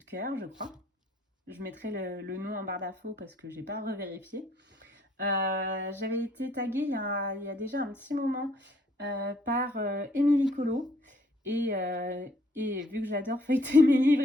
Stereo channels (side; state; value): both; normal; correlation 0.64